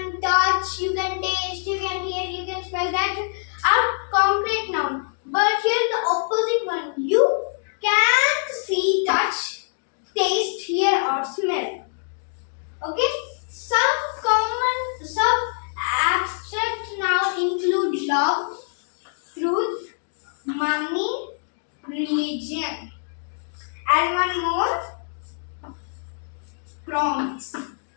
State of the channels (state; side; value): silent; right; digital silence